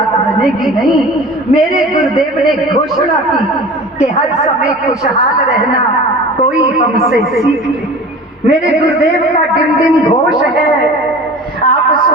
बनेगी नहीं। मेरे गुरुदेव ने घोषणा की कि हर समय खुशहाल रहना कोई हमसे सीख ले। मेरे गुरुदेव का डिम डिम घोष है, आप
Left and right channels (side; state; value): both; normal; correlation 0.39